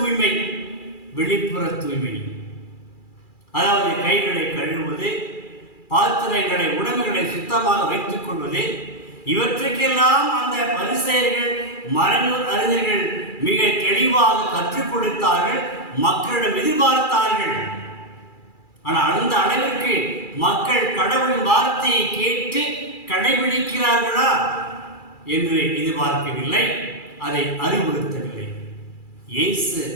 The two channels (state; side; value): late; right; 2.4 ms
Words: வெளிப்புற தூய்மை அதாவது கைகளை கழுவுவது, பாத்திரங்களை, உணவுகளை சுத்தமாக வைத்துக் கொள்வது. இவற்றுக்கெல்லாம் அந்த பரிசேயர்கள், மறைநூல் அறிஞர்கள் மிக தெளிவாக கற்றுக் கொடுத்தார்கள், மக்களிடம் எதிர்பார்த்தார்கள். ஆனால் அந்த அளவிற்கு மக்கள் கடவுளின் வார்த்தையை கேட்டு கடைபிடிக்கிறார்களா என்று எதிர்பார்க்கவில்லை, அதை அறிவுறுத்தவில்லை. இயேசு